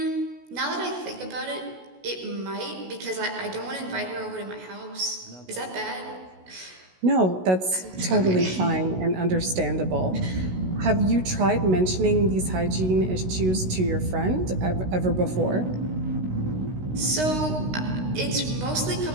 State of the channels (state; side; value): late; left; 16 ms